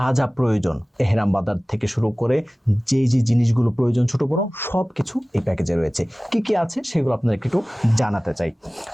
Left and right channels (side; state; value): both; normal; correlation 0.98